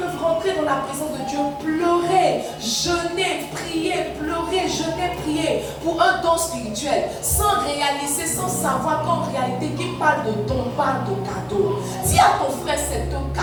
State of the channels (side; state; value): both; identical; correlation 1.00